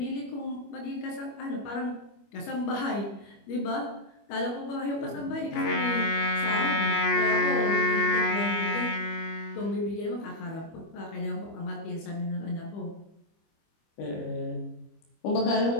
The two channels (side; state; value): right; late; 25 ms